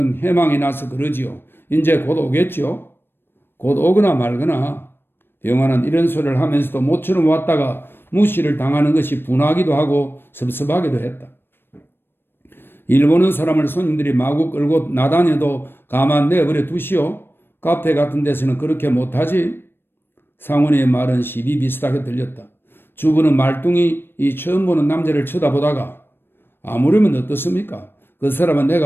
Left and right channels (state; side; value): late; right; 0.10 ms